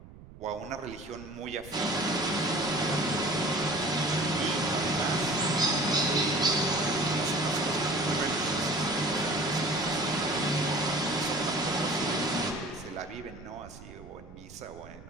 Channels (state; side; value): noise; right; rumble, 18 dB below the sound